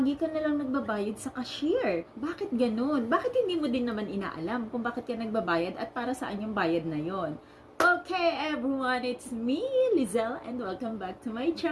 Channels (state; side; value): identical; both; correlation 1.00